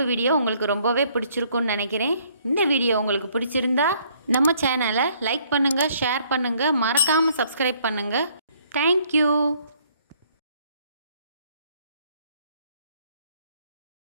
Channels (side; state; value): both; inverted; correlation -0.64